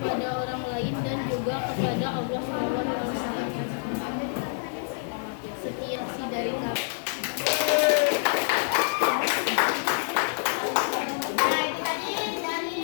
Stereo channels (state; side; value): silent; right; 58 dB below the other